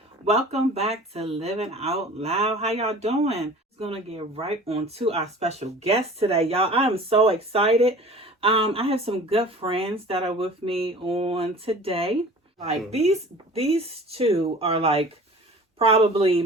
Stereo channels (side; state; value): both; normal; correlation 0.43